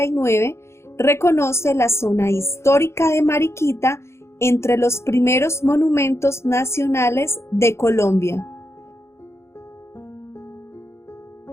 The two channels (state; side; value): late; right; 0.13 ms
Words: reconoce la zona histórica de Mariquita entre los primeros monumentos nacionales de Colombia.